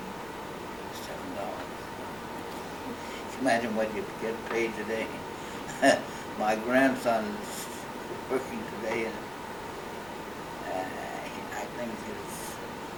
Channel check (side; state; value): right; noise; rumble, 22 dB below the sound